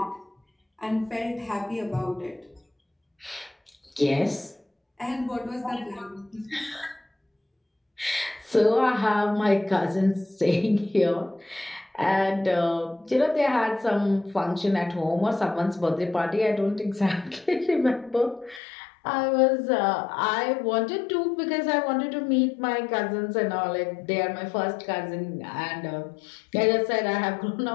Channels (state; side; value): drops out; right; at 18.6 s